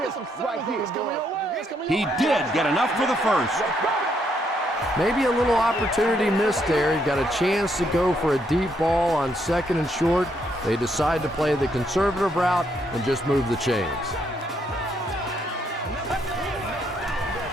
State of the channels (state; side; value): normal; both; correlation 0.74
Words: He did get enough for the first. Maybe a little opportunity missed there. He got a chance to go for a deep ball on second and short. They decide to play the conservative route and just move the chains.